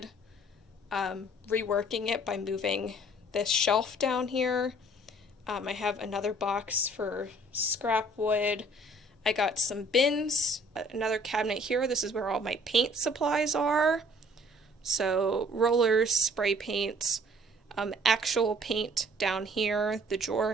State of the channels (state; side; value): normal; both; correlation 0.56